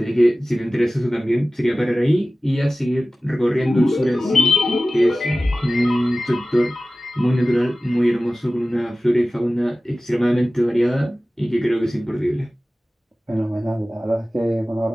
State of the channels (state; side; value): normal; both; correlation 0.96